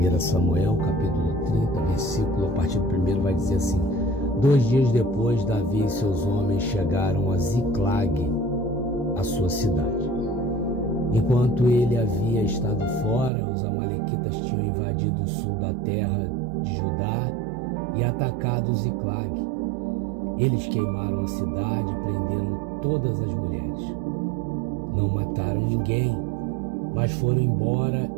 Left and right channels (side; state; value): left; drops out; at 13.3 s